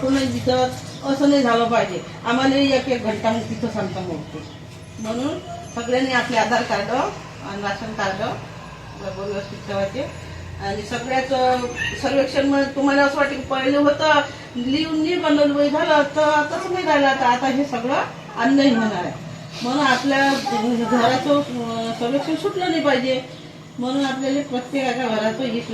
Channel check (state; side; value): identical; both; correlation 1.00